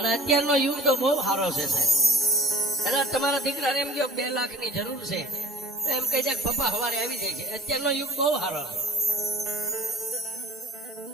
અત્યારનો યુગ તો બહુ સારો છે સાહેબ. એટલે તમારા દીકરાને એમ કહો 2 લાખની જરૂર છે, તો એમ કહી જાય પપ્પા સવારે આવી જાય છે. અત્યારનો યુગ બહુ સારો છે.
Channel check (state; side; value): normal; both; correlation 0.45